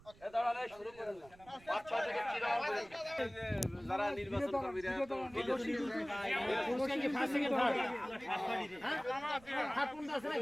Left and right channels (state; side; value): noise; right; rumble, 24 dB below the sound